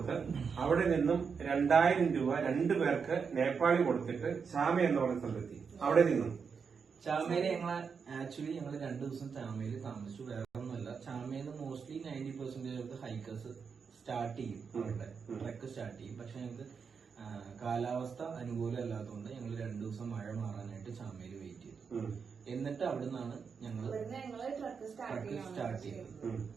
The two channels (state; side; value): quieter; left; 5.9 dB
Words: അവിടെ നിന്നും 2000 രൂപ 2 പേർക്ക് നേപ്പാളി കൊടുത്തിട്ട് ചാമ എന്ന് പറഞ്ഞ സ്ഥലത്തെത്തി. അവിടെ നിന്നും ചാമയില് ആക്ച്വലി ഞങ്ങൾ 2 ദിവസം ചാമയിൽ താമസിച്ചു. വേറെ ഒന്നുമല്ല, ചാമയില് മോസ്റ്റ്ലി 90% ഹൈക്കേഴ്സ് സ്റ്റാർട്ട് ചെയ്യും. അവരുടെ ട്രക്ക് സ്റ്റാർട്ട് ചെയ്യും. പക്ഷെ ഞങ്ങൾക്ക് കാലാവസ്ഥ അനുകൂലമല്ലാത്തതുകൊണ്ട് ഞങ്ങൾ 2 ദിവസം മഴ മാറാനായിട്ട് ചാമയിൽ വെയിറ്റ് ചെയ്തു. എന്നിട്ട് അവിടെ നിന്നാണ് ഞങ്ങൾ ട്രക്ക് സ്റ്റാർട്ട് ചെയ്തത്.